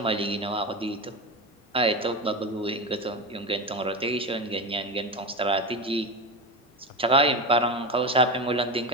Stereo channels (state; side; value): normal; both; correlation 0.21